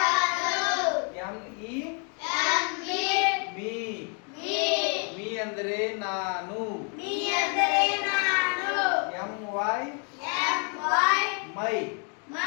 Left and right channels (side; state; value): right; quieter; 39.3 dB